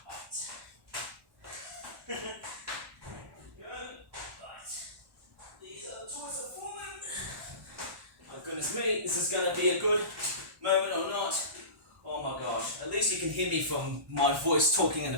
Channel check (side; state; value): left; late; 1.1 ms